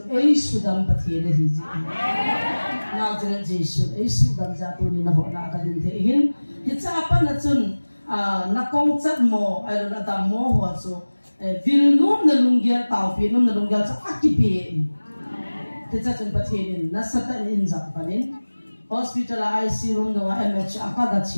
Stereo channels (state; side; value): inverted; both; correlation -1.00